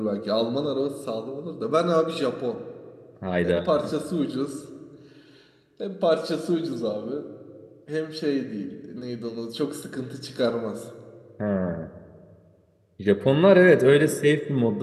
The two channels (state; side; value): identical; both; correlation 1.00